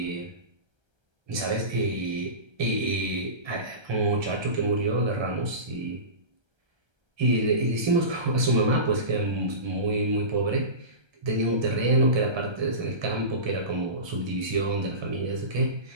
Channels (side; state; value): left; late; 1.3 ms